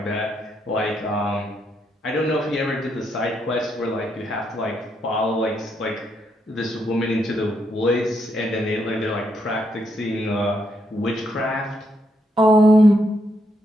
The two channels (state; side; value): normal; both; correlation 0.77